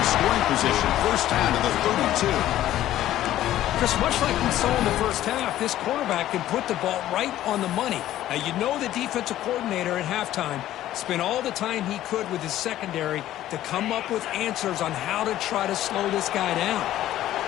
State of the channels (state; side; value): quieter; right; 13.4 dB